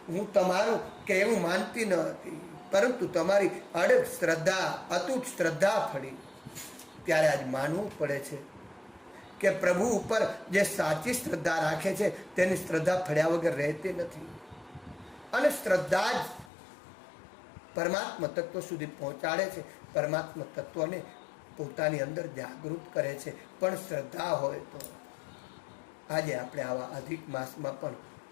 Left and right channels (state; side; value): drops out; right; at 16.5 s